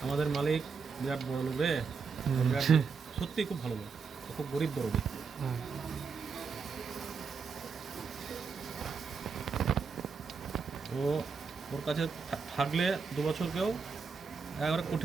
আমাদের মালিক বিরাট বড় লোক রে, বিরাট সত্যি খুব ভালো লোক, খুব গরিব বড় লোক। ও ওর কাছে থাকলে 2 বছর কেউ একেবারে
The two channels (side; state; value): left; quieter; 5.4 dB